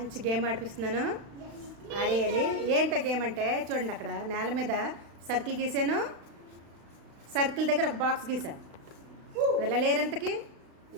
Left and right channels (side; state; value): left; late; 36 ms